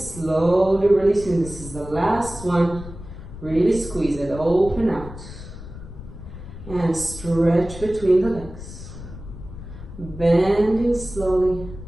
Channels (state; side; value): noise; left; rumble, 13 dB below the sound